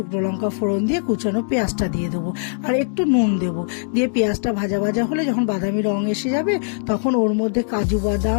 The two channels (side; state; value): right; silent; 65 dB below the other